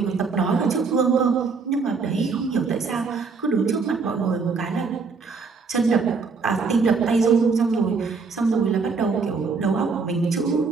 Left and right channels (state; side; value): quieter; left; 4.8 dB